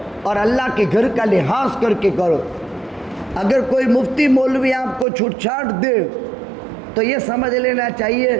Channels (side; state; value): left; drops out; at 5.1 s